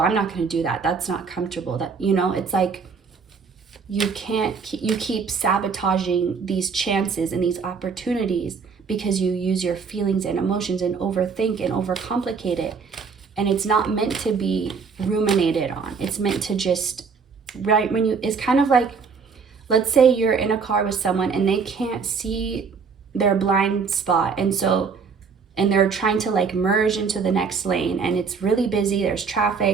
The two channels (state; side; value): quieter; left; 5.5 dB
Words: not going to do that. That's not comfortable. That, it's like, you keep sabotaging these chances and these opportunities because you use your feelings and emotions and overthink and overcomplicate it. And it's not meant to be ruminated on. It's meant to just, right, it's kind of like, let's say you're in a car with someone and they can't see their blind spot. And they're trying to like merge into the next lane and it's really busy, there's